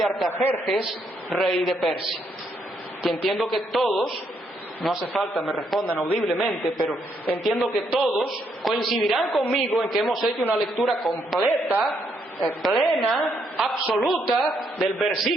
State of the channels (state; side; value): normal; both; correlation 0.74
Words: Artajerjes, rey de Persia. Que entiendo que todos, no hace falta me respondan audiblemente, pero entiendo que todos coincidirán conmigo en que hemos hecho una lectura completa, plena, absoluta del